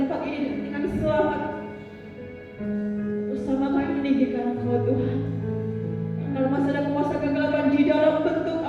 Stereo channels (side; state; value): both; identical; correlation 1.00